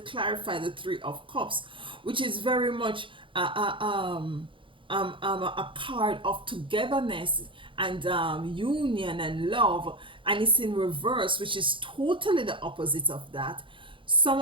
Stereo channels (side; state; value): left; late; 0.25 ms